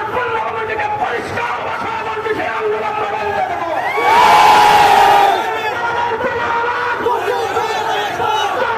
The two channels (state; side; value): identical; both; correlation 1.00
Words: পূর্ণভূমির দিকে পরিষ্কার ভাষায় বলছে, সেই আন্দোলন আমরা বন্ধ দেব।